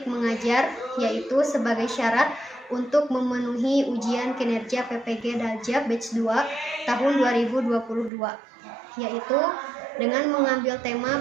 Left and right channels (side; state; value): left; drops out; at 8.1 s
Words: mengajar, yaitu sebagai syarat untuk memenuhi ujian kinerja PPG Daljab Batch 2 tahun 2022, yaitu dengan mengambil tema